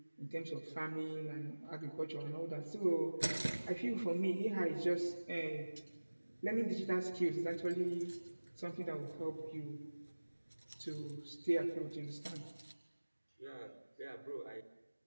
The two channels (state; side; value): inverted; both; correlation -1.00